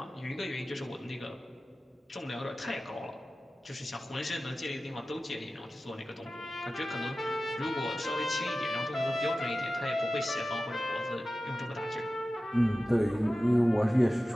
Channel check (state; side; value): normal; both; correlation 0.95